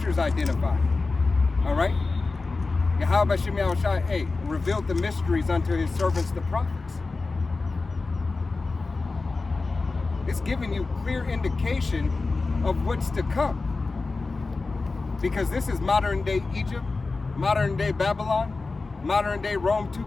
identified. All right? Yahweh Shem Yahushai, hey, revealed the mysteries unto his servants, the prophets. It's giving you clear indication of what's to come. Because this is modern day Egypt, modern day Babylon, modern day Rome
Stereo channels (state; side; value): quieter; right; 3.8 dB